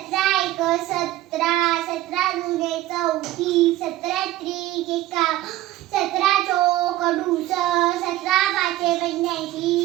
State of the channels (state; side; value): quieter; left; 15.3 dB